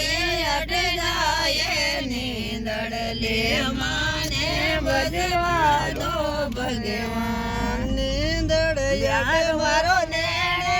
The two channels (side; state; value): both; identical; correlation 1.00